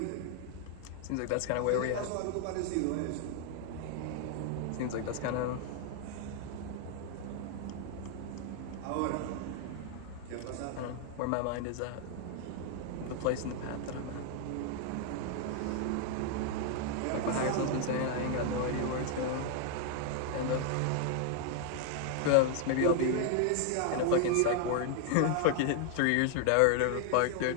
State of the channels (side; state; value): both; different; correlation 0.00